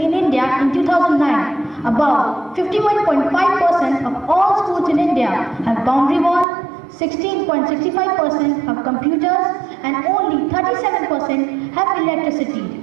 India in 2009, about 51.5% of all schools in India have boundary wall, 16.65% have computers, and only 37% have electricity,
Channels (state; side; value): drops out; left; at 6.5 s